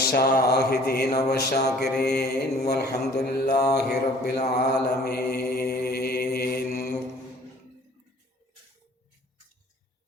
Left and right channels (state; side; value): normal; both; correlation 0.53